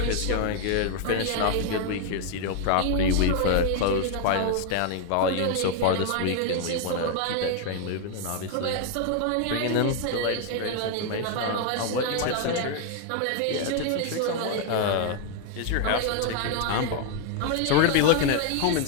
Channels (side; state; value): both; different; correlation 0.00